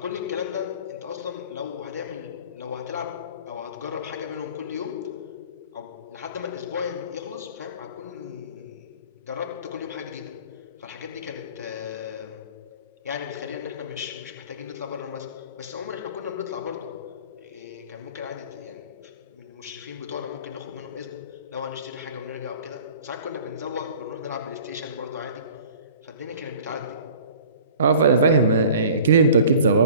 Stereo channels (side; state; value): both; inverted; correlation -0.47